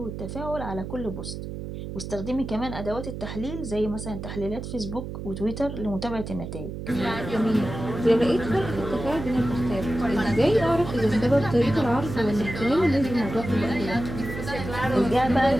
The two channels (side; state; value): right; noise; hum, 8 dB below the sound